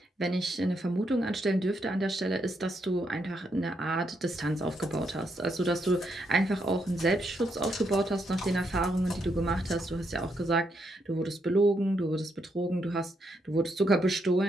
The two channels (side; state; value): both; normal; correlation 0.78